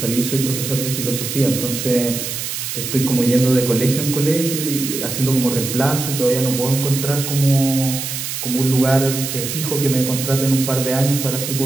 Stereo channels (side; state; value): right; noise; hiss, 5 dB below the sound